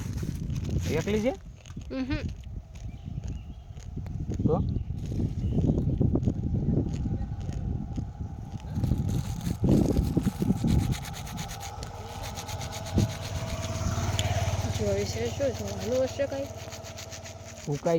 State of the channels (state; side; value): identical; both; correlation 1.00